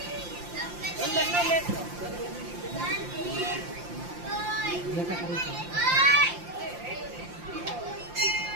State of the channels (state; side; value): late; left; 5.7 ms